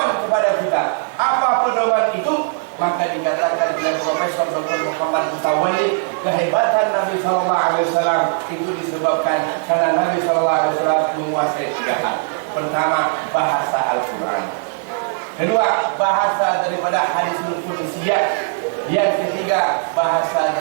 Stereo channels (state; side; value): silent; left; 66 dB below the other